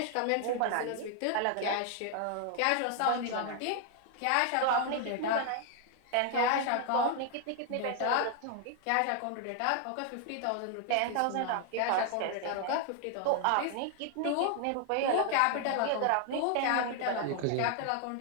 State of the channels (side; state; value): both; different; correlation 0.00